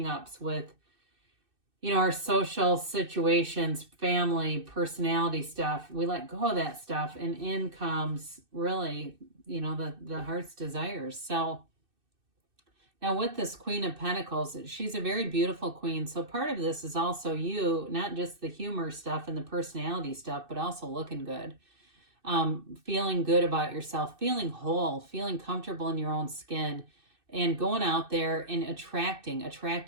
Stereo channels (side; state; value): left; late; 2.6 ms